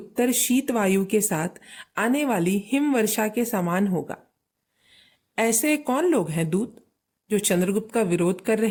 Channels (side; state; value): both; identical; correlation 1.00